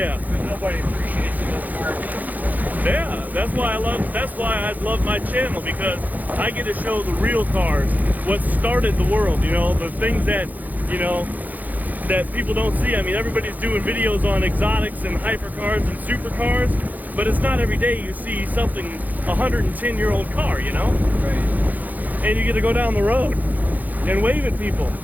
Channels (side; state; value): left; late; 0.082 ms